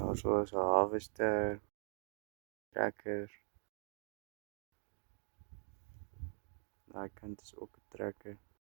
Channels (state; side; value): silent; left; digital silence